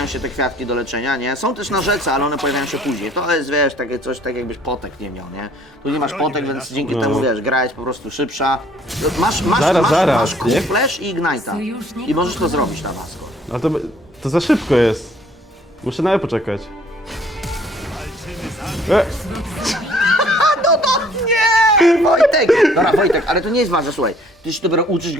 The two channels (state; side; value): normal; both; correlation 0.58